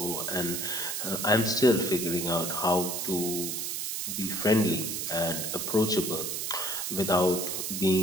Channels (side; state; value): right; noise; hiss, 3 dB below the sound